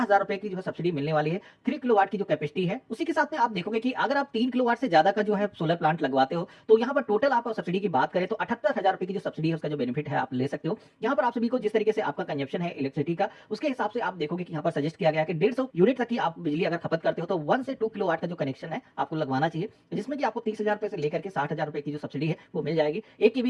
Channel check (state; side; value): identical; both; correlation 1.00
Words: रुपए की जो है सब्सिडी मिलने वाली है 3 किलोवाट की जो कैपेसिटी है। उसी के साथ में आप देखोगे कि अगर आप 3 किलोवाट से ज्यादा का जो है सोलर प्लांट लगवाते हो तो यहाँ पर टोटल आप सब्सिडी की बात करें तो 78,000 रुपए की जो सब्सिडी है उसका जो बेनिफिट है आप ले सकते हो। यहाँ पर आप सभी को जिस तरीके से आपका कंजप्शन है इलेक्ट्रिसिटी का उसके हिसाब से आप देखोगे कि यहाँ पर सजेस्ट किया गया है कि 150 यूनिट तक की आप बिजली अगर खपत करते हो तो 1 से 2 किलोवाट का जो कनेक्शन है आपको लगवाना चाहिए, जिसमें कि आपको 30,000 रुपए से लेकर के 60,000 रुपए की जो सब्सिडी है वो मिल जाएगी। 1 केवी